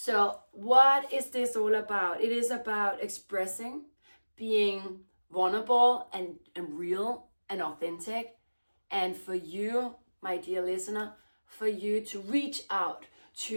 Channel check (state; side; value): inverted; both; correlation -1.00